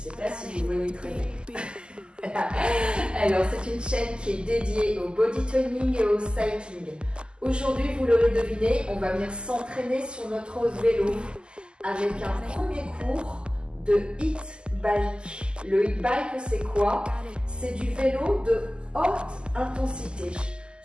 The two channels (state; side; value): late; left; 0.049 ms